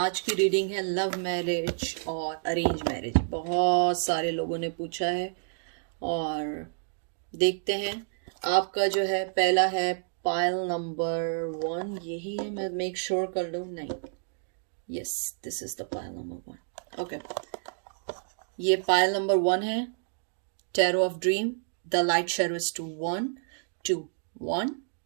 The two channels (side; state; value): left; silent; digital silence